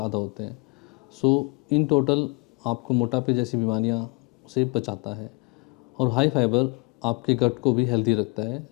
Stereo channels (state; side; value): quieter; right; 30.3 dB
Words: होते हैं। सो इन टोटल आपको मोटापे जैसी बीमारियां से बचाता है। और हाई फाइबर आपके गट को भी हेल्दी रखता है,